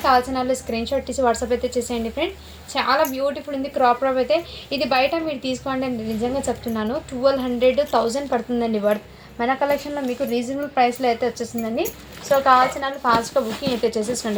కావాల్సిన వాళ్ళు స్క్రీన్ షాట్ తీసి వాట్సాప్ అయితే చేసేయండి ఫ్రెండ్. చాలా బ్యూటిఫుల్ ఉంది క్రాప్ టాప్ అయితే. ఇది బయట మీరు తీసుకోండి అని నిజంగా చెప్తున్నాను, 1200-1000 పడుతుందండి వర్త్. మన కలెక్షన్లో మీకు రీజనబుల్ ప్రైస్లో అయితే వచ్చేసిందండి. సో కావాల్సిన వాళ్ళు ఫాస్ట్గా బుకింగ్ అయితే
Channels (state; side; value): identical; both; correlation 1.00